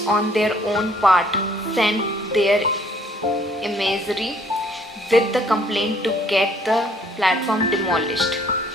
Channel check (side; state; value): both; normal; correlation 0.62